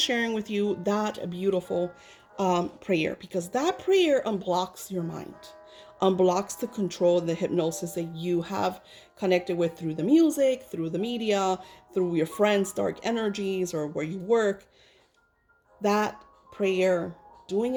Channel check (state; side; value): identical; both; correlation 1.00